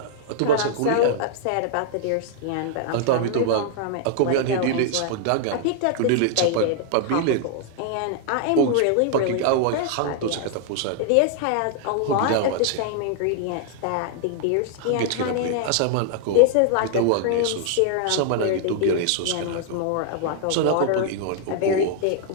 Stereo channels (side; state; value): both; different; correlation 0.00